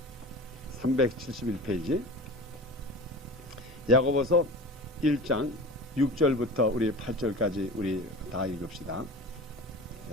371페이지 야고보서 1장 6절부터 우리 8절까지 우리 다 읽읍시다.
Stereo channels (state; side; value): normal; both; correlation 0.35